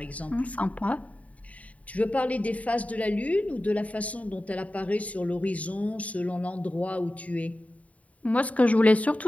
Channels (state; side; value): late; right; 0.068 ms